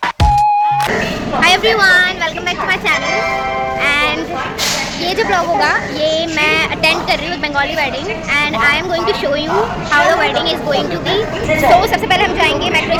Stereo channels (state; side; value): identical; both; correlation 1.00